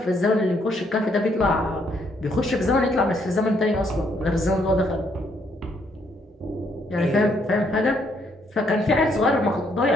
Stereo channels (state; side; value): normal; both; correlation 0.71